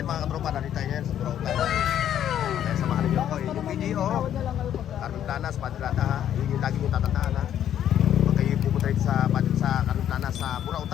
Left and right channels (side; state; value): right; quieter; 10.5 dB